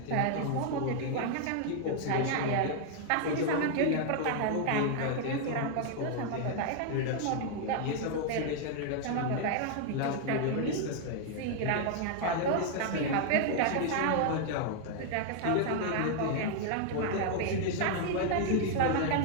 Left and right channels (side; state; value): both; different; correlation 0.00